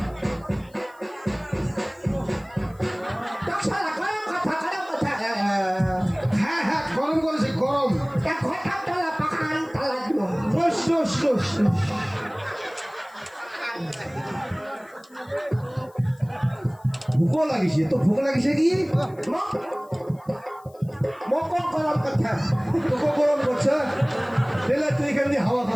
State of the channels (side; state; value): left; noise; hiss, 30 dB below the sound